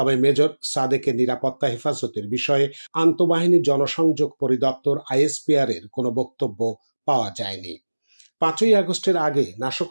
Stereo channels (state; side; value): inverted; both; correlation -1.00